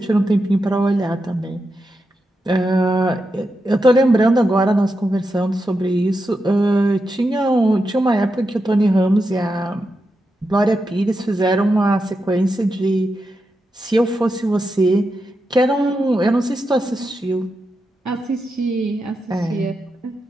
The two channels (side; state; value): both; normal; correlation 0.87